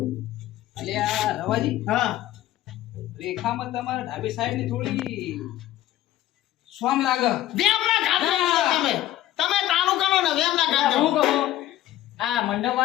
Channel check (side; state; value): right; quieter; 14.0 dB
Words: એટલે આ રવાજી હા રેખામાં તમારા ડાબી સાઈડ ની થોડી સ્વામ લાગે વેમ ના ખાતો તમે તમે તાણું કરો ને વેમ ના ખાતો હું કહું આ મંડપ